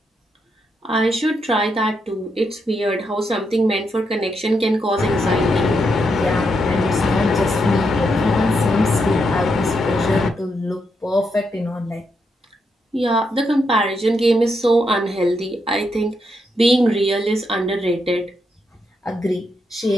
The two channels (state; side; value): normal; both; correlation 0.81